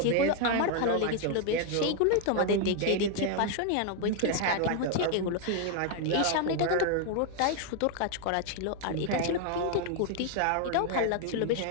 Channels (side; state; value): both; different; correlation 0.00